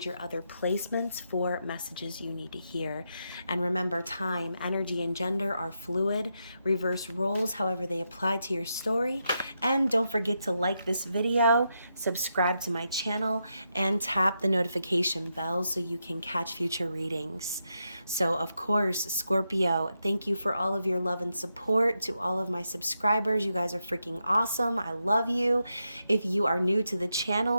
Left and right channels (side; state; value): both; inverted; correlation -0.84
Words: your other placements for messages you need to hear. And remember, time, energy, and gender are fluid. Reverse roles, however they apply to your story. And don't forget to like this video, subscribe to my channel, and tap the notification bell so you can catch future readings. So, of course, Scorpio, thank you for all of your love and support. To all of my subscribers, you guys are freaking awesome. I love you. If you are new to the